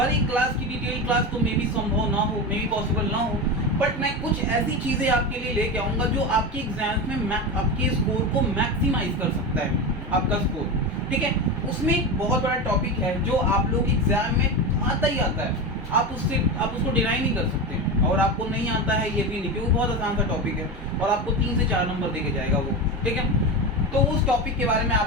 एक क्लास की डिटेल क्लास तो मे भी संभव ना हो, मे भी पॉसिबल ना हो, बट मैं कुछ ऐसी चीज़ें आपके लिए लेके आऊँगा जो आपके एग्जाम्स में आपके स्कोर को मैक्सिमाइज कर सकता है, आपका स्कोर। ठीक है, उसमें एक बहुत बड़ा टॉपिक है जो आप लोग एग्जाम में आता ही आता है, आप उसको डिनाई नहीं कर सकते और आपको नहीं आता है ये भी नहीं, क्योंकि बहुत आसान सा टॉपिक है और आपको 3 से 4 नंबर देके जाएगा वो। ठीक है, तो उस टॉपिक के बारे में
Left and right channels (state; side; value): normal; both; correlation 0.21